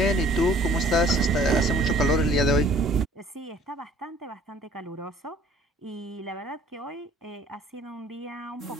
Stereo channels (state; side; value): normal; both; correlation 0.55